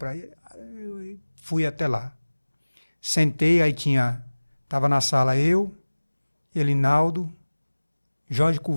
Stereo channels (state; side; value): inverted; both; correlation -1.00